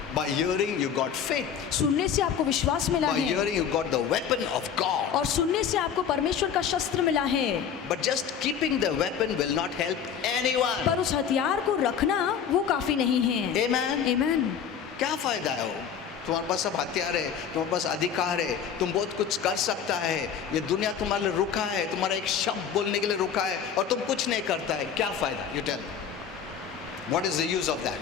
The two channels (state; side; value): quieter; right; 7.7 dB